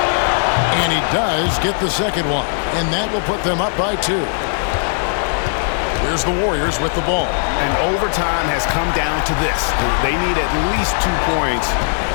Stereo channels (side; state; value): right; silent; digital silence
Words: And he does get the second one. And that will put them up by 2. Here's the Warriors with the ball. And overtime has come down to this. They need at least 2 points